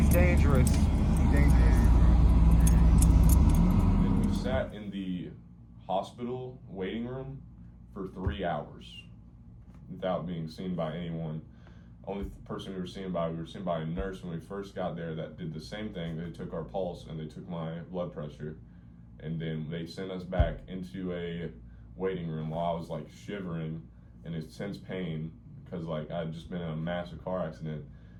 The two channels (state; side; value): identical; both; correlation 1.00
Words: dangerous. He's dangerous. And we sat in the hospital waiting room for 3 hours without being seen by anyone. Only person we were seen by a nurse when we first got there that did the same thing. They took our pulse and they took my blood pressure, and then they sent us back into a waiting room while I was like shivering in intense pain because like I'd just been in a massive car accident,